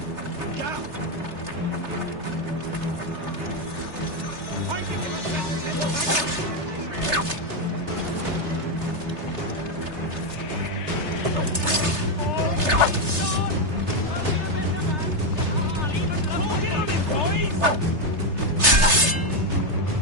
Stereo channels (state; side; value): late; left; 3.3 ms